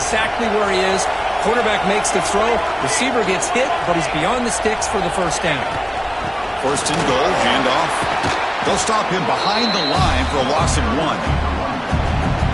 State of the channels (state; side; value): identical; both; correlation 1.00